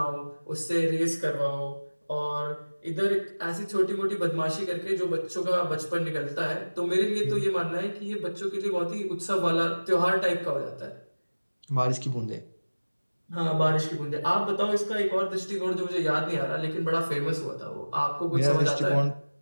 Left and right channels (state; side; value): inverted; both; correlation -1.00